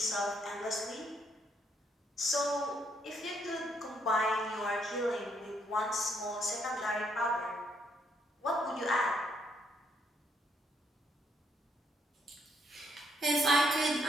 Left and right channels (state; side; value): normal; both; correlation 0.72